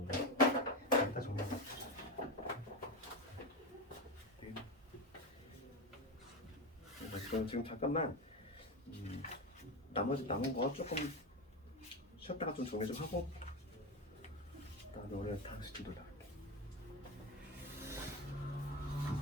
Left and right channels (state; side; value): normal; both; correlation 0.17